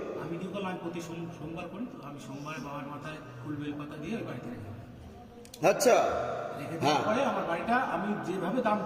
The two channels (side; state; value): both; identical; correlation 1.00